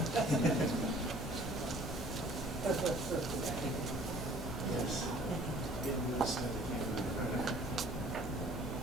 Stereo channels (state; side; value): normal; both; correlation 0.53